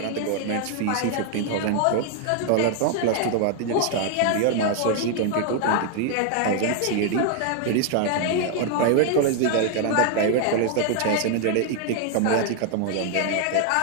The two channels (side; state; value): both; different; correlation 0.00